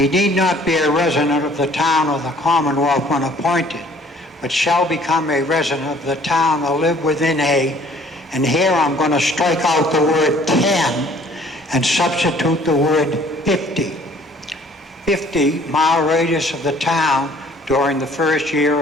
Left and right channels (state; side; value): normal; both; correlation 0.56